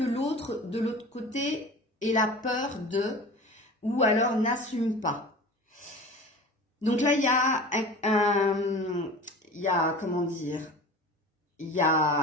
l'autre, de l'autre côté, ait la peur de ou alors n'assume pas. Donc là, il y a comment dire, il y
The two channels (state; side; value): normal; both; correlation 0.37